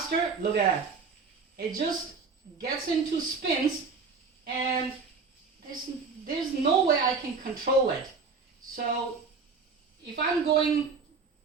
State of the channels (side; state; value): left; quieter; 4.9 dB